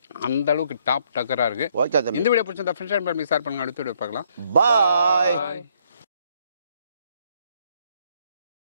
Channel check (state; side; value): inverted; both; correlation -0.69